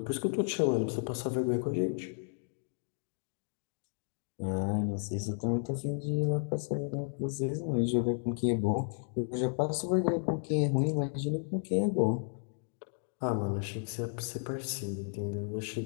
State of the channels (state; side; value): silent; right; digital silence